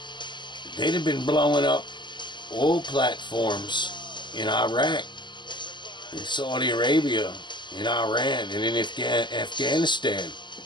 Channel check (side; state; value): right; late; 0.22 ms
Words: they'd have been blowing up oil platforms in Iraq, in Saudi Arabia, in Iran, and in Afghanistan.